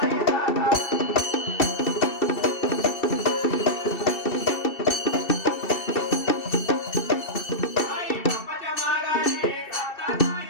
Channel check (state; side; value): late; right; 2.6 ms